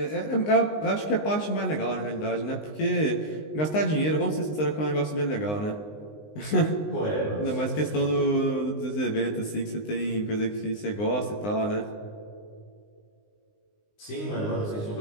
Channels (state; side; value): late; right; 19 ms